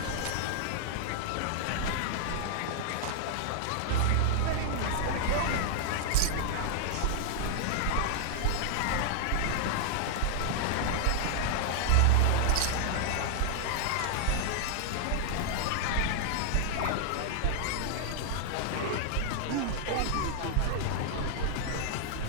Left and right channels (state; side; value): different; both; correlation -0.01